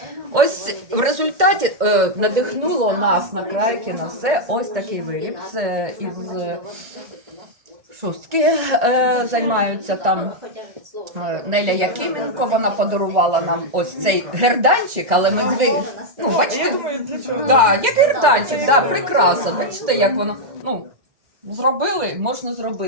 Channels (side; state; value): left; late; 1.6 ms